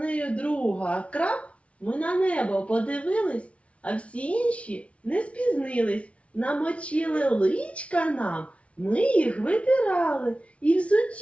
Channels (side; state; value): right; late; 0.062 ms